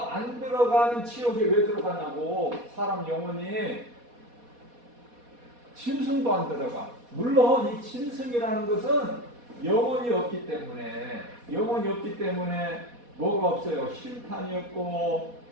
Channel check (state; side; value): late; left; 4.2 ms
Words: 지옥에 왜 들어가냐고. 사람 영혼이 짐승도 안 들어가. 물론 이 짐승이라는 것은 영혼이 없기 때문에 뭐가 없어요? 심판이 없고